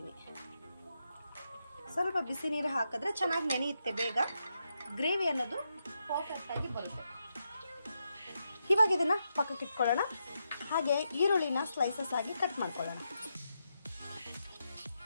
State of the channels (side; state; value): both; inverted; correlation -0.84